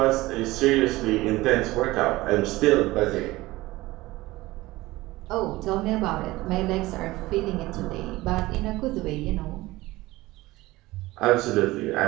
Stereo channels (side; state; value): left; quieter; 19.1 dB